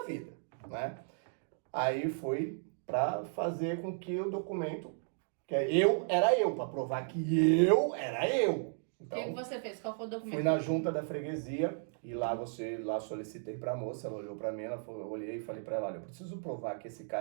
vida, né? Aí fui para fazer com que o documento, que era eu, para provar que eu era eu. O Então, que você fez? Qual foi o documento? fui na junta da freguesia e lá solicitei para a moça, ela olhou para mim, eu olhei e falei para ela, olha, eu preciso provar que esse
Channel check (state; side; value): silent; left; digital silence